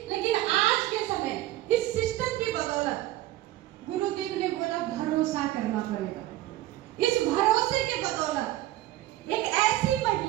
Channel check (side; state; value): left; quieter; 15.5 dB